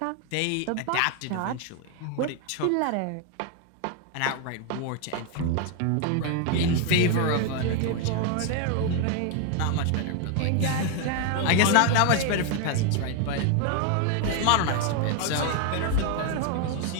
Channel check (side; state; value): both; different; correlation 0.01